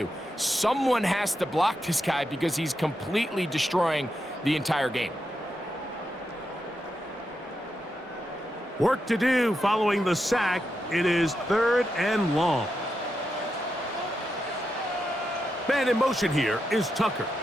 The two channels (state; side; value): normal; both; correlation 0.85